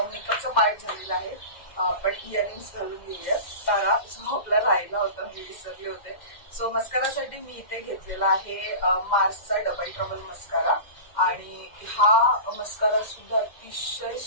मेकअपचा पार्ट झालेला आहे. आपण इयरिंग्स घालून घेऊयात. तारा जो आपला राहिला होता मी विसरले होते. सो मस्कारासाठी मी इथे घेतलेला आहे मार्सचा डबल ट्रबल मस्कारा. आणि हा मस्कारा सुद्धा अतिशय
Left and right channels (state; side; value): late; right; 2.1 ms